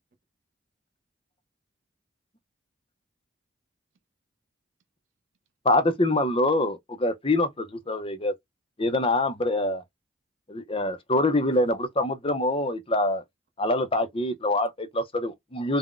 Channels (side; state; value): both; normal; correlation 0.22